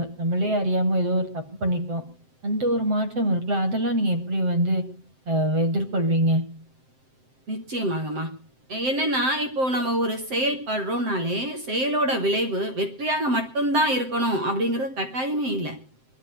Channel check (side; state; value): left; late; 7.7 ms